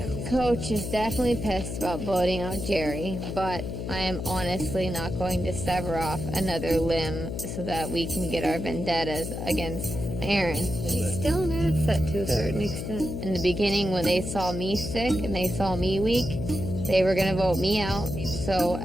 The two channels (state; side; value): noise; left; hum, 5 dB below the sound